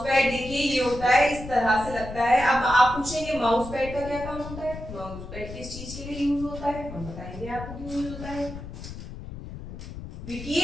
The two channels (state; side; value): noise; left; rumble, 11 dB below the sound